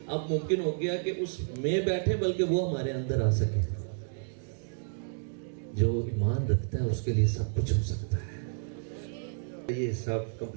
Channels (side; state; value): left; silent; digital silence